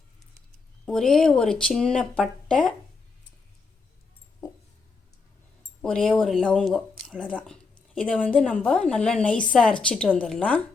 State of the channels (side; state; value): right; quieter; 4.4 dB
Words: ஒரே ஒரு சின்ன பட்டை, ஒரே ஒரு லவங்கம், அவ்வளோதான். இதை நம்ம நல்லா நைஸாக அரைச்சிட்டு வந்துடலாம்.